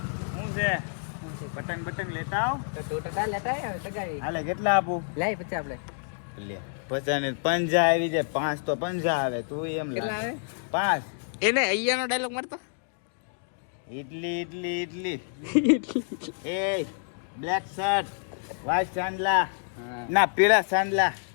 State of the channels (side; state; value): right; silent; digital silence